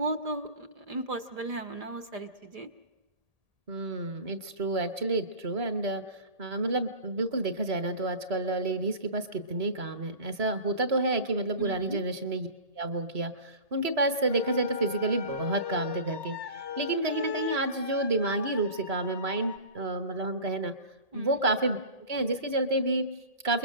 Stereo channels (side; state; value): left; late; 1.8 ms